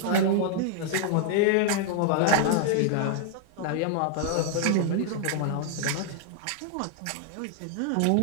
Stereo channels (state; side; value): different; both; correlation 0.00